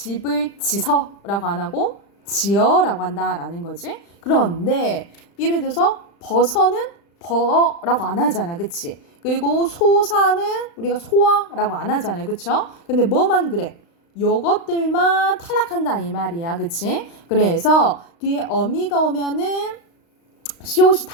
지서라고 안 하고 지어라고 한다라는 거지. 그런데 예를 들어서 버서는 버라고 안 하잖아, 그치? 그리고 소사는 우리가 소아라고 안 하잖아요, 그쵸? 근데 뭐만 그래? 요것들만 탈락한다 이 말이야, 그치? 그래서 뒤에 어미가 오면은 시옷이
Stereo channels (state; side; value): late; right; 35 ms